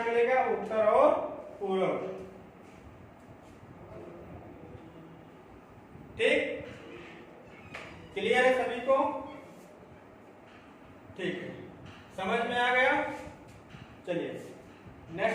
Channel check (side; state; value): both; identical; correlation 1.00